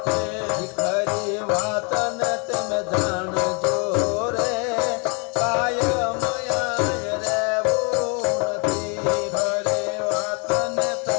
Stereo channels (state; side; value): quieter; right; 34.8 dB